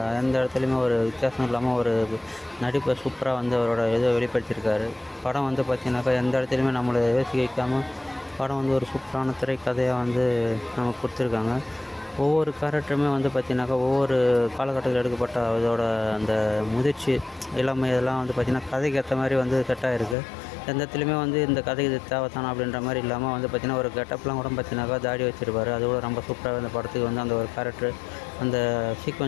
எந்த இடத்துலையுமே ஒரு வித்தியாசம் இல்லாமல் ஒரு நடிப்பை சூப்பராக வந்து அவரோட இதை வெளிப்படுத்தியிருக்காரு. படம் வந்து பார்த்திங்கனாக்கா எந்த இடத்துலையுமே நம்மளை யோசிக்க வைக்காமல் படம் வந்து ஒரு சூப்பரான திரைக்கதையாக வந்து நமக்கு கொடுத்துருக்காங்க. ஒவ்வொரு கேரக்டருமே வந்து பார்த்திங்கனாக்கா ஒவ்வொரு காலகட்டத்தில் எடுக்கப்பட்ட அதோட அந்த முதிர்ச்சி, இளமை இதெல்லாம் வந்து பார்த்திங்கன்னா கதைக்கு ஏற்ற மாதிரி வந்து செட்டாக இருக்குது. எந்த இடத்துலையுமே வந்து இந்த கதைக்கு இது தேவைத்தானா அப்படின்ற மாதிரி இல்லாமல் வந்து பார்த்திங்கன்னா ஒரு கெட்டப்லாம் கூட பார்த்திங்கனாக்கா தாடி வச்சுருப்பார். அது கூட ரொம்ப சூப்பராக இந்த படத்துக்கு வந்து அந்த ஒரு கேரக்டர் அந்த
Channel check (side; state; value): right; drops out; at 20.2 s